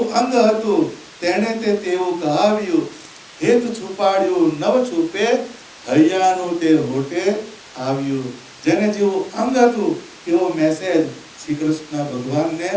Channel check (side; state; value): both; identical; correlation 1.00